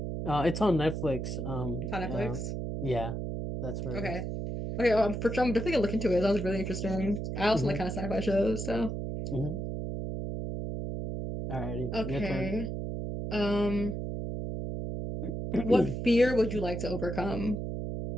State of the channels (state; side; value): noise; right; hum, 4 dB below the sound